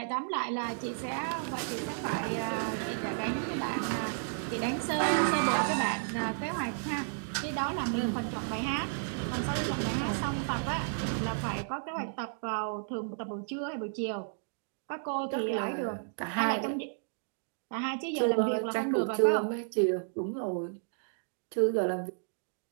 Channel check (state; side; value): silent; left; digital silence